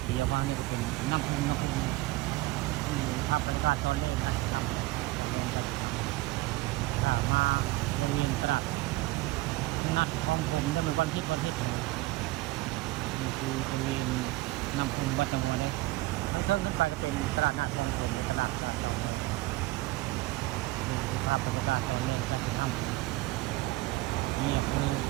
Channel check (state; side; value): quieter; left; 19.6 dB